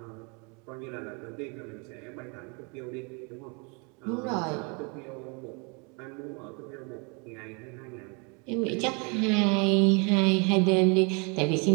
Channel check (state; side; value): quieter; left; 33.0 dB